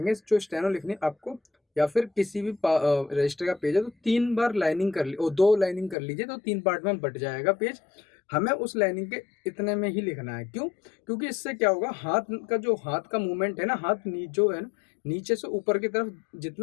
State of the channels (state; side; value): drops out; right; at 6.0 s